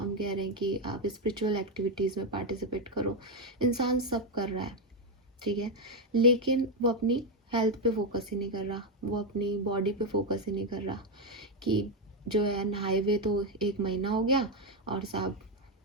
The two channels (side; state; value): both; normal; correlation 0.05